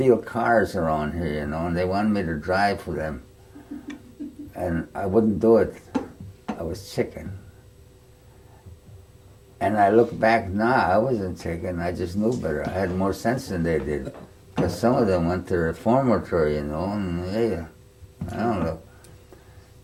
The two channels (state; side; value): identical; both; correlation 1.00